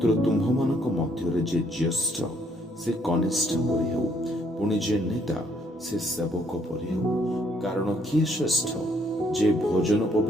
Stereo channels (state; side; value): normal; both; correlation 0.68